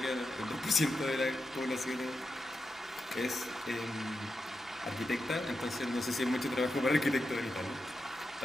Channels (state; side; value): normal; both; correlation 0.88